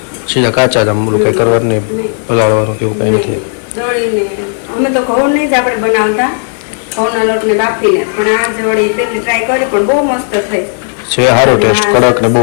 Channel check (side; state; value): right; silent; digital silence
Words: સીધા કાચા જ આમ બોલું કંઈ કરવાનું નહીં, પલાળવાનું કેવું કંઈ નથી. દળીને અમે તો ઘઉંની જ આપણે બનાવતા, ઘઉંના લોટને બાફીને, પણ આ જ વળી પહેલી ટ્રાય કરી પણ બહુ મસ્ત થઈ છે. સારો ટેસ્ટ, કડક ને બહુ